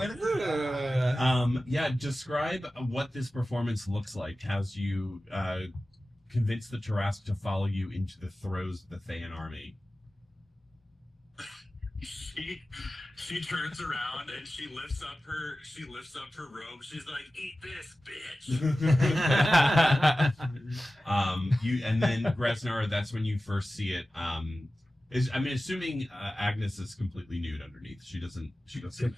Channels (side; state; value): both; normal; correlation 0.95